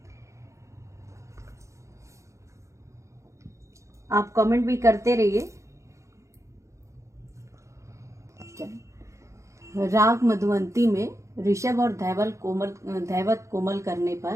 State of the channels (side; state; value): left; late; 0.15 ms